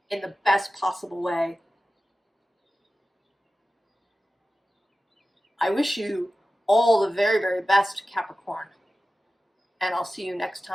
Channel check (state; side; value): normal; both; correlation 0.95